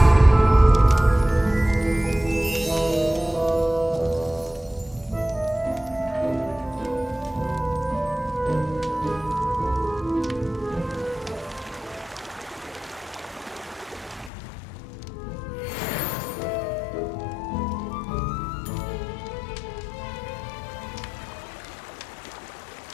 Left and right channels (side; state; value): right; drops out; at 14.3 s